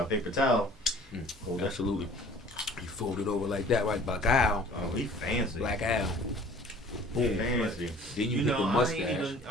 paper towel. Hold that. absolutely. You fold it over like that, right? Black Al. Oh, he fancy. Black Al. Boom. Fancy. Then you You hit know, the mustache.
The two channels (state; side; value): normal; both; correlation 0.49